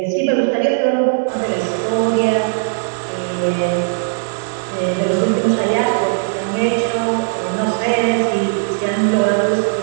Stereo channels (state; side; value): silent; left; 56 dB below the other